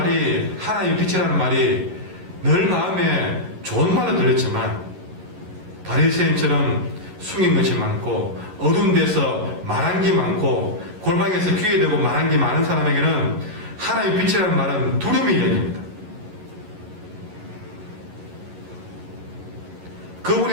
하나님의 빛이라는 말이 늘 마음에 좋은 말로 들렸지만 바리새인처럼 숨긴 것이 많고 어두운 데서 말한 게 많고 골방에서 귀에 대고 말한 게 많은 사람에게는 하나님의 빛이라는 말은 두려움의 이야기입니다.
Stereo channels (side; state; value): left; late; 11 ms